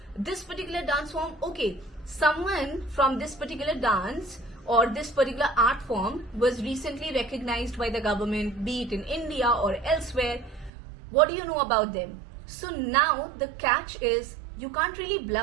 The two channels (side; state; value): left; drops out; at 10.7 s